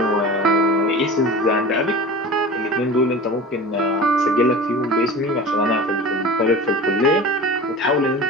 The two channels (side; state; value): both; normal; correlation 0.36